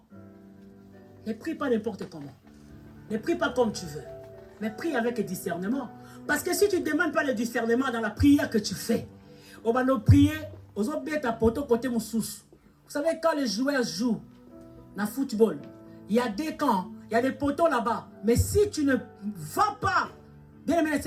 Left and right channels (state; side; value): identical; both; correlation 1.00